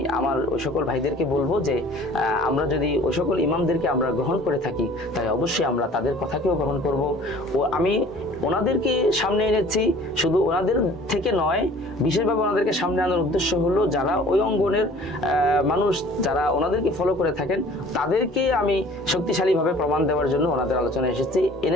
আমার ওই সকল ভাইদেরকে বলবো যে আমরা যদি ওই সকল ইমামদেরকে আমরা গ্রহণ করে থাকি, তাই অবশ্যই আমরা তাদের কথাকেও গ্রহণ করব। ও আমি ওনাদেরকে সামনে এনেছি শুধু ওনাদের থেকে নয়, বিশেষভাবে ওনাদেরকে সামনে আনার উদ্দেশ্য হলো যারা ওই অঙ্গনের মানুষ, যারা ওনাদেরকে ফলো করে থাকেন, তাদেরকে আমি শক্তিশালীভাবে প্রমাণ দেওয়ার জন্য ওনাদের আলোচনা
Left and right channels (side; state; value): both; normal; correlation 0.49